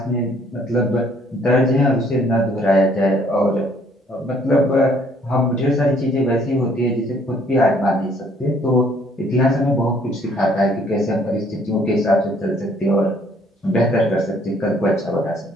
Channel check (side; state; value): both; normal; correlation 0.63